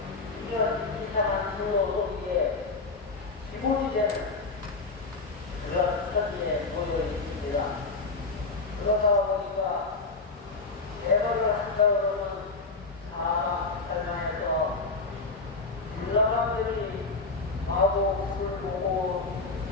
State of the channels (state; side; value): quieter; right; 3.9 dB